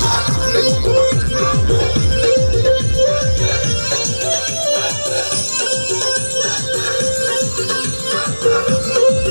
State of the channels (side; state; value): both; inverted; correlation -1.00